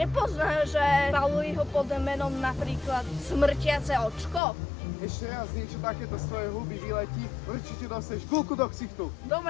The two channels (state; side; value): drops out; right; at 4.4 s